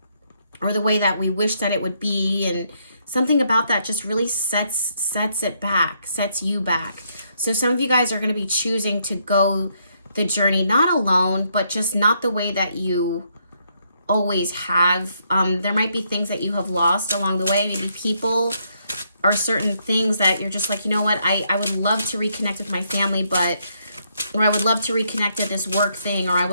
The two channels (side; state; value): both; inverted; correlation -0.74